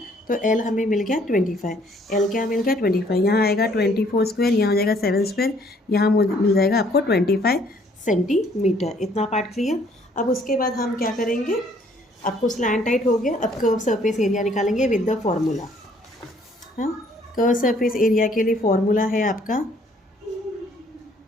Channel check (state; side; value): normal; both; correlation 0.62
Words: तो L हमें मिल गया 25। L क्या मिल गया 25, यहाँ आएगा 24 स्क्वायर, यहाँ हो जाएगा 7 स्क्वायर, यहाँ मिल जाएगा आपको 25 सेंटीमीटर। इतना पार्ट क्लियर। अब उसके बाद हम क्या करेंगे, आपको स्लैंट टाइट हो गया। अब कर्व सरफेस एरिया निकालेंगे विद द फॉर्मूला। हाँ, कर्व सरफेस एरिया के लिए फॉर्मूला है आपका